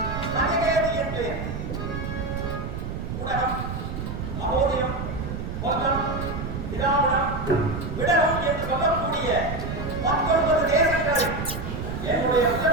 மணிகேதி என்று உலகம் மகோதயம் வங்கம் திராவிடம் விடகம் என்று சொல்லக்கூடிய 19 தேசங்களில் என்னுடைய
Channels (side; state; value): right; noise; rumble, 5 dB below the sound